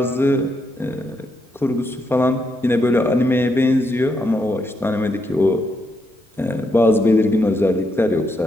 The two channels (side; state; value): both; normal; correlation 0.79